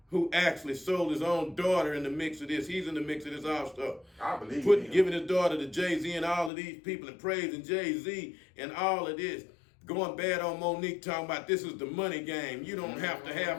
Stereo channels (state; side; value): drops out; right; at 6.5 s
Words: who actually sold his own daughter in the mix of this. He's in the mix of this also. I believe giving his daughter to Jay-Z and all of these people and praising Jay-Z and all of this. Going bad on Monique, talking about this is the money game. You don't have to